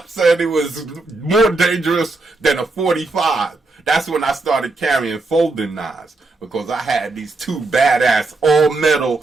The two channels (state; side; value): quieter; left; 3.3 dB